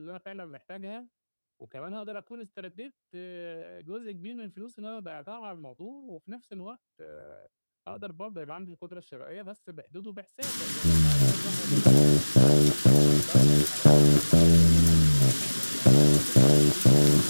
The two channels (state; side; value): inverted; both; correlation -1.00